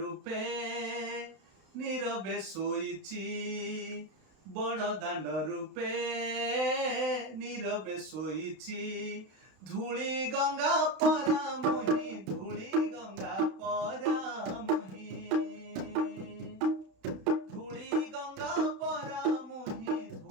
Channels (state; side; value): late; left; 32 ms